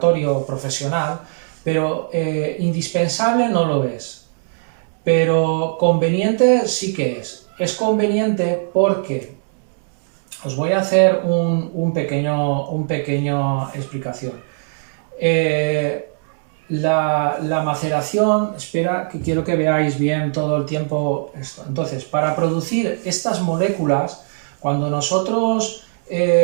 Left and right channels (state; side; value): silent; left; 65 dB below the other